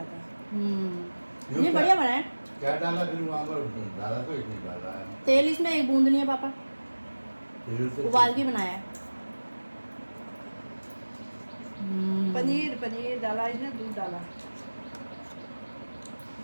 ये बढ़िया बना है। क्या डाला फिर वहाँ पर? डाला तो इसमें डाला है तेल इसमें एक बूंद नहीं है पापा, तेल से। उबाल के बनाया है। पनीर डाला इसने, दूध डाला।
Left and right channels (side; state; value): both; inverted; correlation -1.00